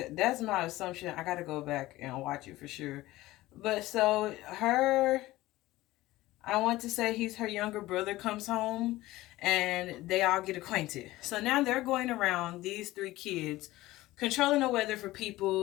that's my assumption. I got to go back and watch it for sure. But so I want to say he's her younger brother comes home and they all get acquainted. So now they're going around, these 3 kids, controlling the weather for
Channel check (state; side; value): quieter; right; 17.6 dB